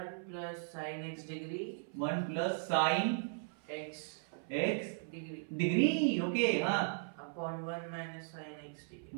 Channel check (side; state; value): left; silent; 53 dB below the other